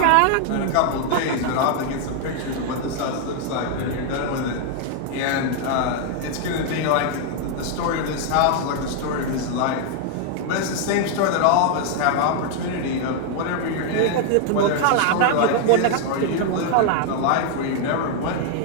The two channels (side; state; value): both; different; correlation 0.00